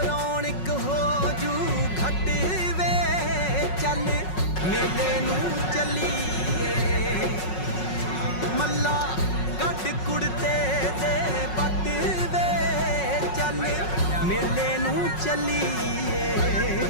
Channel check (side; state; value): right; late; 5.4 ms